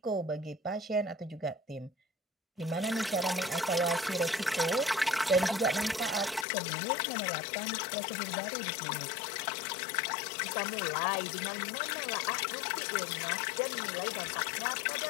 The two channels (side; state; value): right; drops out; at 6.5 s